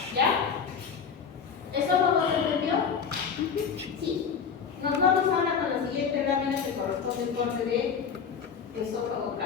¿ya? ¿Eso no se entendió? Sí. Nos vamos ahora con la siguiente lámina que corresponde al corte de esófago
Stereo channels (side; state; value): right; quieter; 6.5 dB